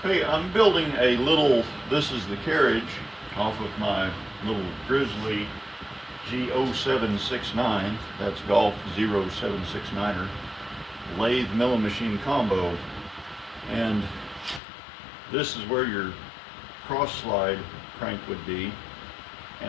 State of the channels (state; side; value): drops out; right; at 14.6 s